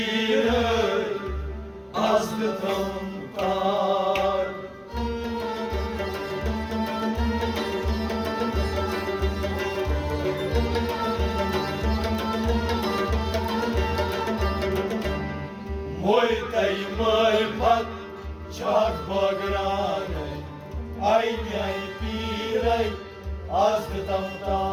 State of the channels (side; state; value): both; identical; correlation 1.00